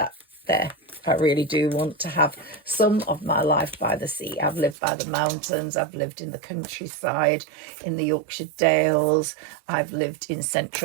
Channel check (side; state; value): left; drops out; at 4.8 s